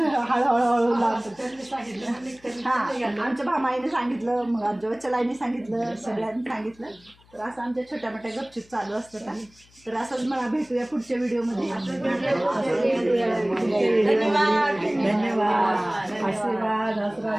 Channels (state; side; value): noise; left; hum, 29 dB below the sound